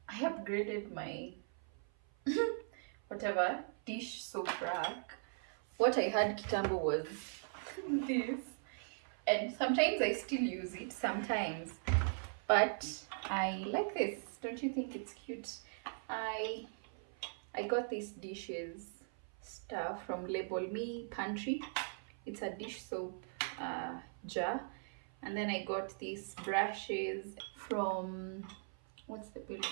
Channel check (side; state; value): left; silent; 51 dB below the other